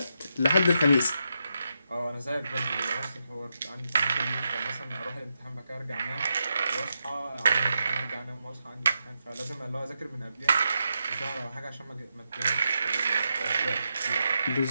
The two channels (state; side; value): inverted; both; correlation -0.85